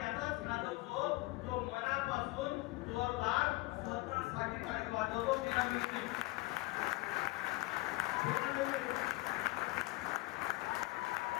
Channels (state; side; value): quieter; right; 22.2 dB